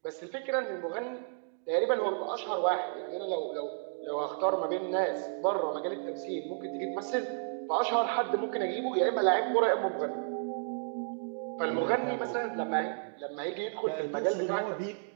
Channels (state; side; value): silent; left; digital silence